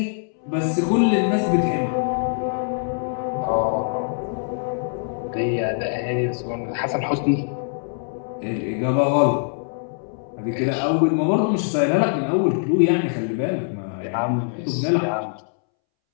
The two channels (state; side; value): silent; right; 63 dB below the other